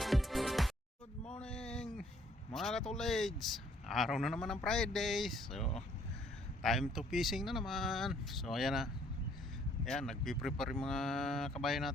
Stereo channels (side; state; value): both; normal; correlation 0.63